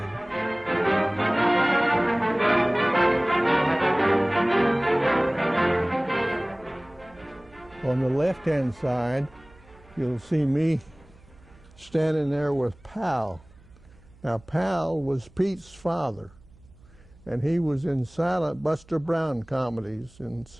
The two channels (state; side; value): noise; right; hum, 26 dB below the sound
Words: On the left-hand side, you'll see me standing there with Pal. Now, Pal was Pete's father, and he was in silent Buster Brown comedies and